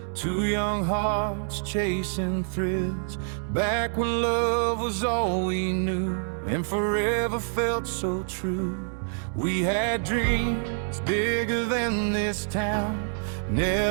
two young hearts chasing thrills, back when love was all we knew and forever felt so true. We had dreams bigger than this town,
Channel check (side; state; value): left; silent; 60 dB below the other